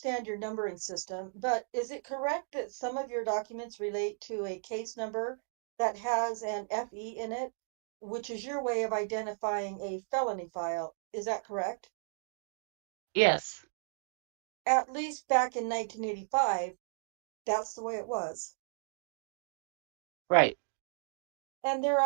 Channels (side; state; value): left; silent; digital silence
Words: your numbering system, but is it correct that some of your documents relate to a case number that has an FE in it, which is your way of identifying a felony file? Is that correct? Yes, At least back in 1985, that's the way it was. right. And there